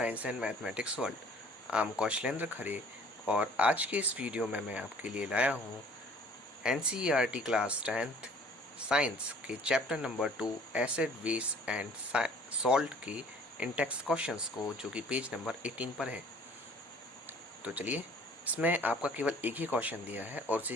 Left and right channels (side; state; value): both; normal; correlation 0.53